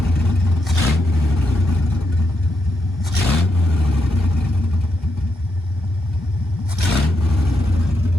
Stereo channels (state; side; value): normal; both; correlation 0.82